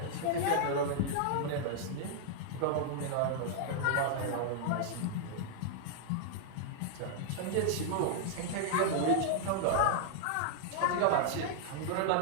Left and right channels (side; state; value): both; different; correlation -0.01